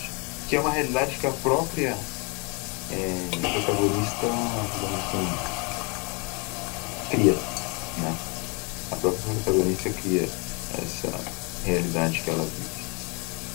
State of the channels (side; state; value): right; quieter; 31.9 dB